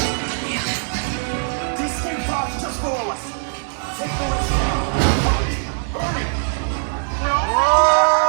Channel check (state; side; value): silent; left; digital silence